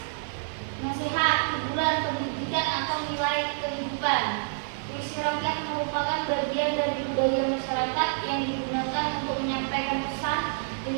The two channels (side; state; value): left; silent; digital silence